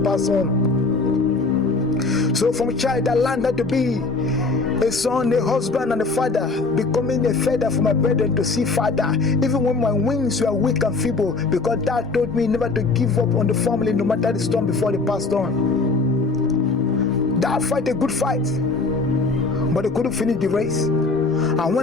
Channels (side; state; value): right; quieter; 3.8 dB